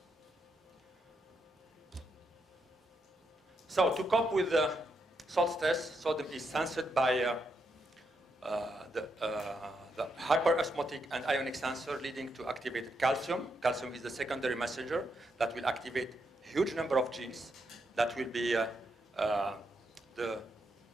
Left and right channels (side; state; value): both; normal; correlation 0.80